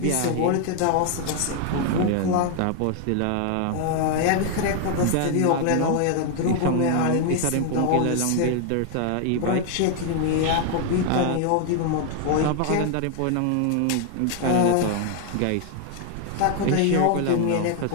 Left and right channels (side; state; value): both; different; correlation 0.00